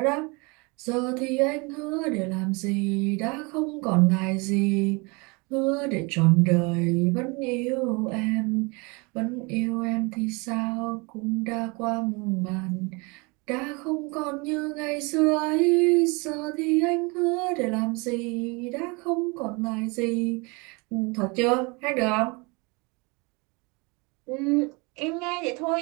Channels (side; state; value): left; quieter; 28.7 dB